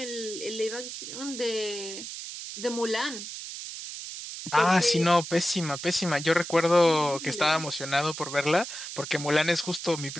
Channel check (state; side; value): noise; right; hiss, 9 dB below the sound